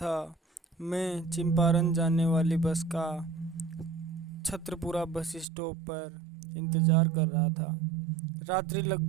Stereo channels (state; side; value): drops out; left; at 5.5 s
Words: मैं चंपारण जाने वाली बस का छत्रपुरा बस स्टॉप पर इंतज़ार कर रहा था। रात्रि